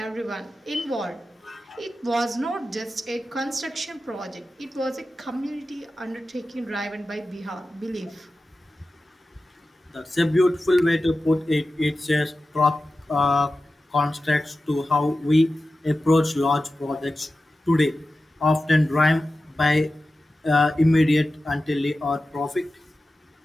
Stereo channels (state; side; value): normal; both; correlation 0.94